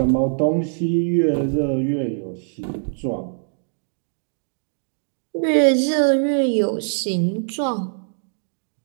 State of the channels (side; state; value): left; silent; digital silence